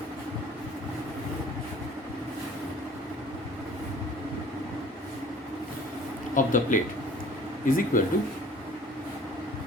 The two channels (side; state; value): both; normal; correlation 0.50